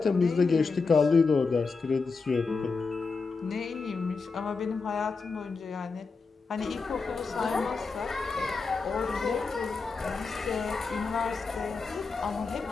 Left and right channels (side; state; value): right; quieter; 4.5 dB